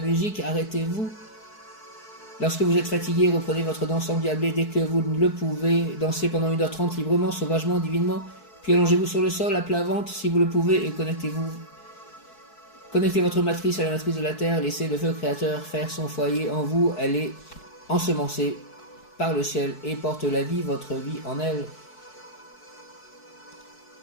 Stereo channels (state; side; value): late; right; 4.6 ms